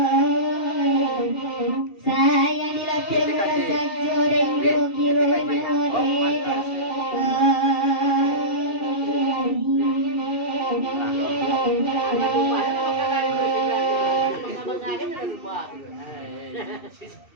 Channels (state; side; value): late; right; 2.7 ms